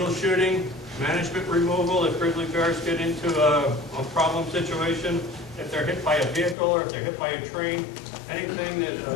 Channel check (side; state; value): right; drops out; at 6.6 s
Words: shooting, management removal if grizzly bears get into a problem situation, if they're hit by a vehicle or if they're hit by a train, anything that